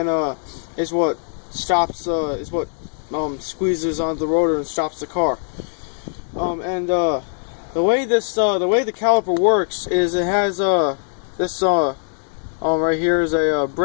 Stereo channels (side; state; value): right; silent; digital silence